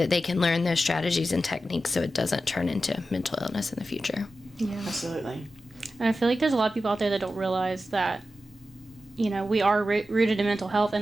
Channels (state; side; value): normal; both; correlation 0.92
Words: they can learn those strategies and techniques so it doesn't turn into mental illness in the future. Yeah, absolutely. And I feel like there's a lot of people out there that don't realize that, we are rooted in mental health,